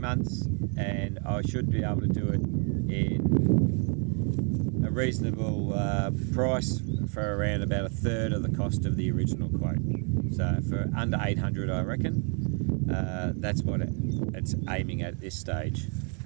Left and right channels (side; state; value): left; quieter; 39.7 dB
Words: and I should be able to do it in a reasonable price for around about 1/3 of the cost of the original quote. So for under 800 I reckon. That's what it's aiming at this stage.